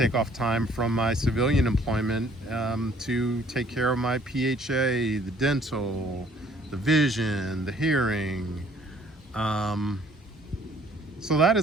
off time from my civilian employment to take care of my PHA, the dental, the vision, the hearing. So that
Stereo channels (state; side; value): normal; both; correlation 0.59